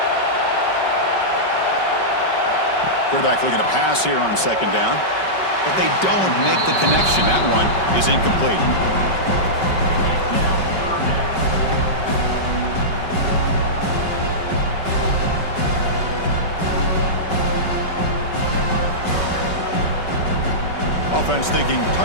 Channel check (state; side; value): late; right; 5.3 ms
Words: Quarterback looking to pass here on 2nd down. But they don't make the connection. That one is incomplete. Offense thinking